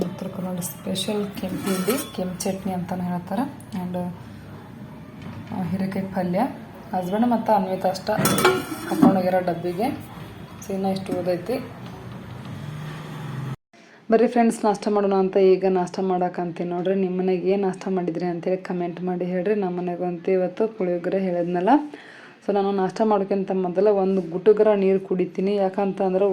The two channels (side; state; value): both; identical; correlation 1.00